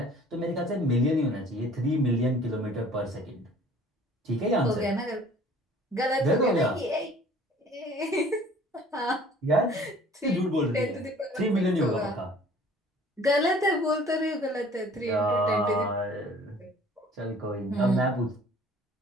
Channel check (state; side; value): normal; both; correlation 0.51